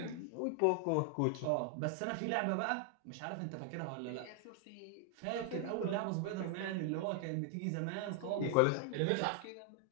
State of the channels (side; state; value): both; different; correlation 0.00